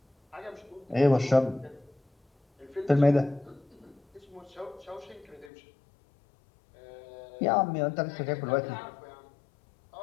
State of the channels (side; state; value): right; drops out; at 5.5 s